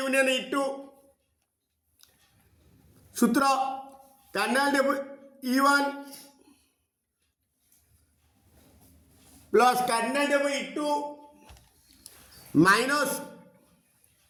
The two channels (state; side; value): identical; both; correlation 1.00